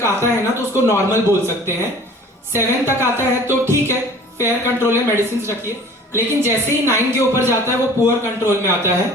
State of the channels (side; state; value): both; normal; correlation 0.47